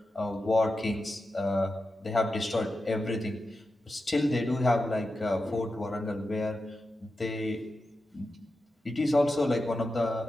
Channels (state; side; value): normal; both; correlation 0.90